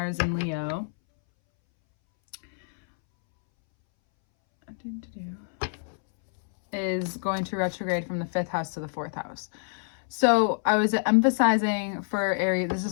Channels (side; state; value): right; silent; 60 dB below the other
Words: in Leo. Is going to retrograde from the 5th house to the 4th house. So I was emphasizing for Aries, this